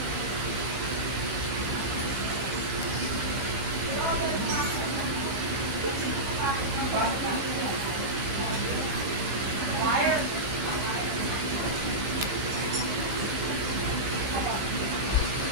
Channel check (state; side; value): late; left; 16 ms